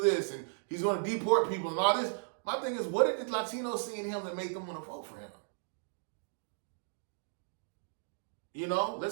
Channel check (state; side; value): silent; left; digital silence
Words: this and he's going to deport people and all this, my thing is, what did the Latinos see in him that made them want to vote for him?